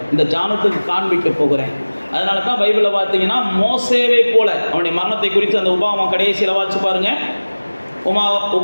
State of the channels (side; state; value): both; inverted; correlation -1.00